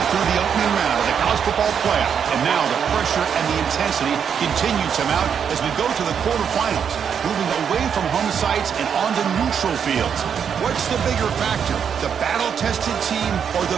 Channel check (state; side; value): quieter; left; 7.5 dB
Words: through the opening round of the college football playoff, and now the pressure and the intensity continue to mount as we go to the quarterfinals, moving away from home sites and onto neutral fields. What's the bigger factor, the battle-tested team or the